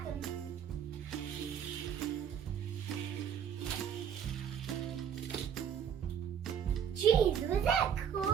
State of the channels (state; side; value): quieter; left; 8.3 dB